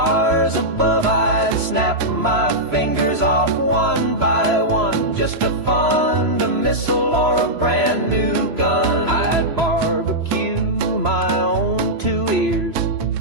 above. I'd snap my fingers off one by one just to fund a missile or a brand new gun. I'd barbecue my own 2 ears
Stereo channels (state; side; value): late; left; 3.0 ms